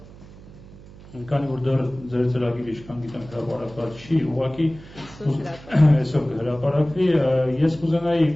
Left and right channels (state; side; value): noise; right; hum, 19 dB below the sound